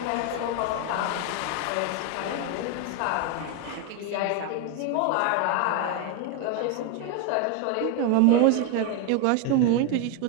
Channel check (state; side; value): different; both; correlation 0.02